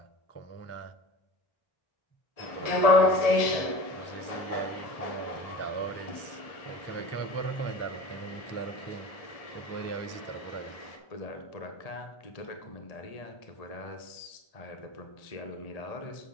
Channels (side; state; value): right; late; 1.7 ms